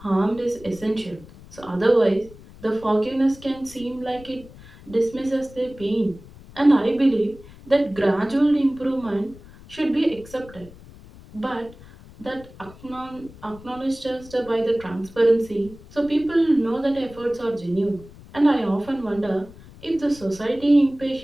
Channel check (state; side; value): noise; left; rumble, 20 dB below the sound